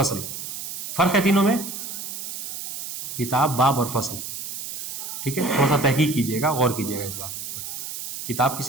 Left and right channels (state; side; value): noise; right; hiss, 7 dB below the sound